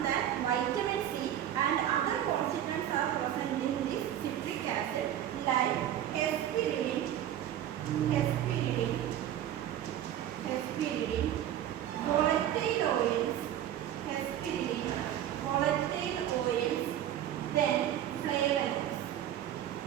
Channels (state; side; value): quieter; left; 11.3 dB